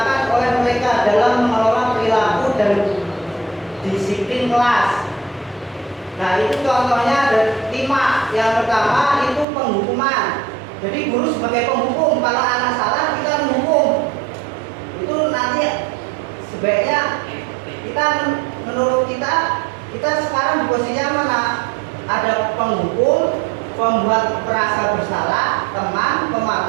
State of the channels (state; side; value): drops out; left; at 9.5 s